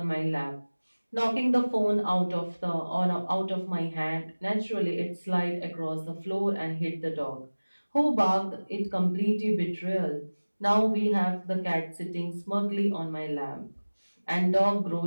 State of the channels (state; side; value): inverted; both; correlation -1.00